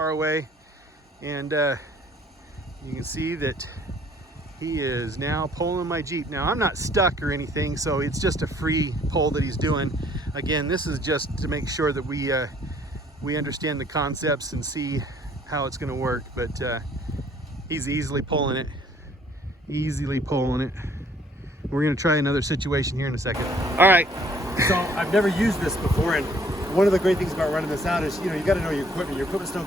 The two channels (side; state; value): both; normal; correlation 0.60